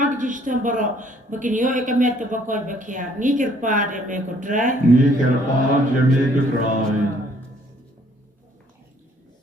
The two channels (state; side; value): normal; both; correlation 0.62